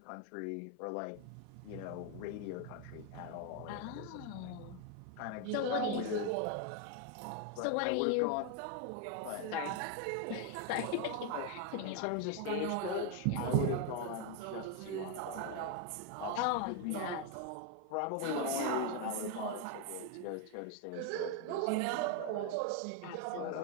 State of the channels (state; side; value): different; both; correlation 0.01